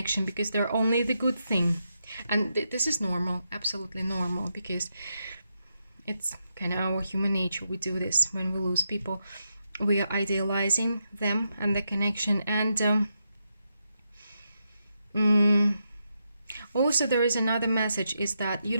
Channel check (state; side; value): inverted; both; correlation -0.84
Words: because they're only the good thing. And this is normal, absolutely normal, because it's kind of our human nature. We do this when we lose people. We are idealizing them and the connection. And also there is another message, is that you